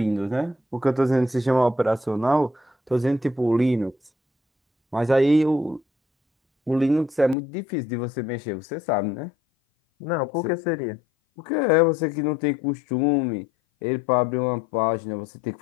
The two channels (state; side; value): drops out; right; at 7.4 s